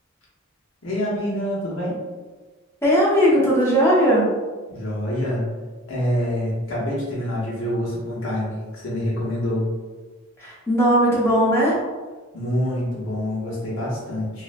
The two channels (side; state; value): both; normal; correlation 0.43